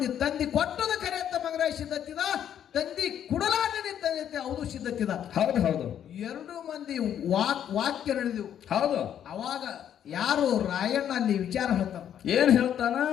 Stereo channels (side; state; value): right; quieter; 9.7 dB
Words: ತಂದಿ ಕೊಟ್ಟದ ಕರೆ ಅಂತ ಮಂಗರಾಯ ಸಿದ್ಧತ್ತಿದ ತಂದಿ ಕುಡಲಾನೆ ತಂದೆ ಹೌದು ಸಿದ್ಧತ್ತಿದ. ಹೌದು ಹೌದು 2 ಮಂದಿ ವಾಕ್ಯ ನಡೆದಿವು. ಹೌದು. ಅವಾಗ ಯಾರು ರಾಯಣ್ಣ ಅಲ್ಲಿ ವಿಚಾರ ಹೇಳ್ತಾನ. ಏನ್ ಹೇಳ್ತಾನ?